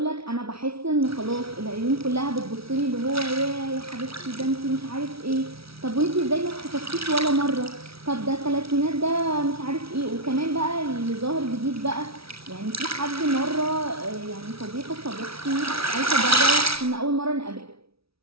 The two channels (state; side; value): late; left; 0.76 ms